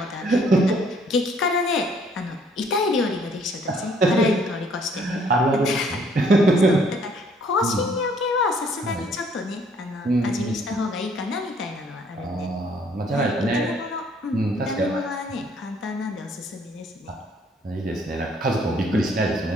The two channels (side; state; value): both; normal; correlation 0.63